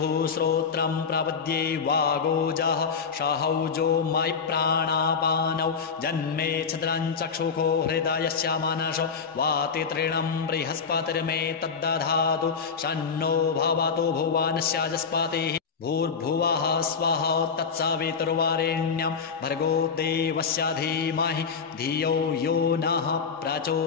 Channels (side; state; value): right; quieter; 5.7 dB